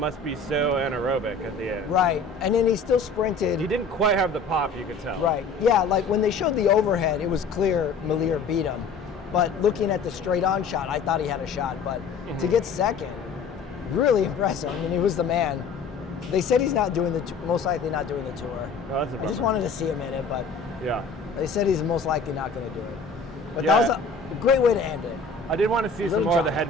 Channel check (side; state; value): right; quieter; 4.5 dB